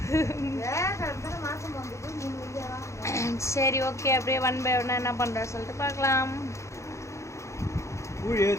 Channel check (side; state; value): right; late; 0.14 ms